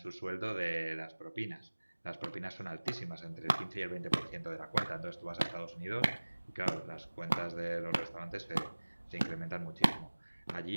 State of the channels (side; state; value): both; inverted; correlation -1.00